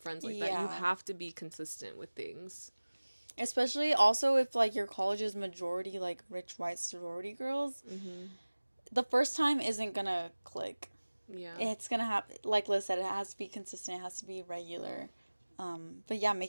like that. You Yeah. have to be consistent with things. Especially also if like your college is majority like rich white sorority girls, Mhm. the first time isn't gonna click. Yeah. It's gonna have, like Liz said, it has to be consistent, it has to be regular. But yeah,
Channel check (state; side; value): inverted; both; correlation -1.00